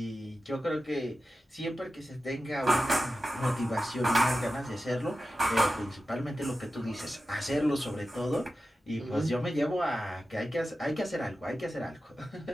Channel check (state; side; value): normal; both; correlation 0.93